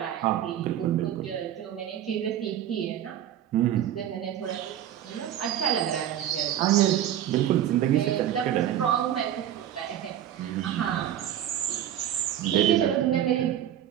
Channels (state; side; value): quieter; left; 11.1 dB